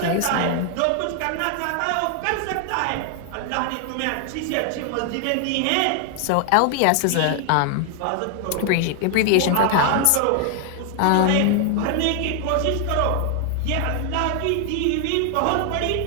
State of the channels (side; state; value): both; different; correlation 0.00